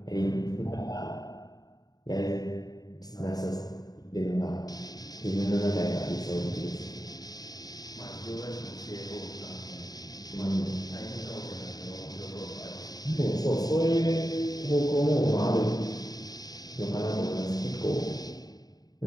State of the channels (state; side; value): late; right; 0.19 ms